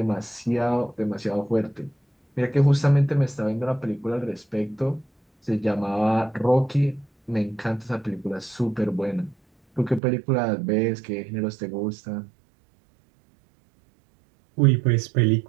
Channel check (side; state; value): left; drops out; at 10.0 s